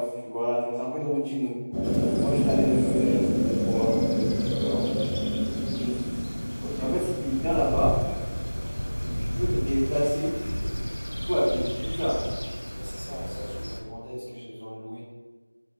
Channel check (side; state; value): both; inverted; correlation -1.00